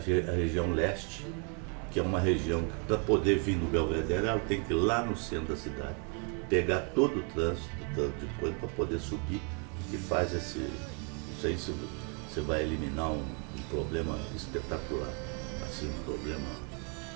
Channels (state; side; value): quieter; left; 36.2 dB